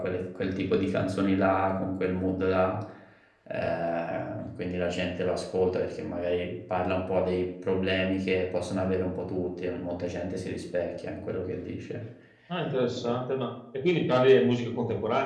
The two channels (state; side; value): identical; both; correlation 1.00